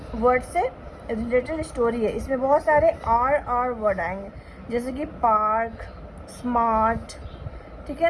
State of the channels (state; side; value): identical; both; correlation 1.00